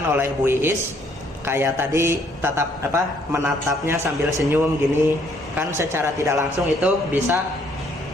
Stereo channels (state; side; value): normal; both; correlation 0.66